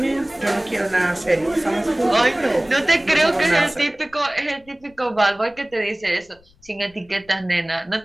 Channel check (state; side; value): noise; left; rumble, 30 dB below the sound